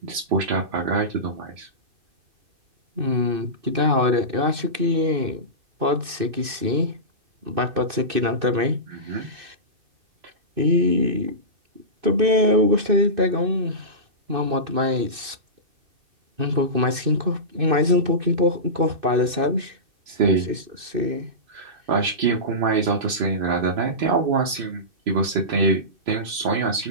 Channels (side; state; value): left; late; 2.6 ms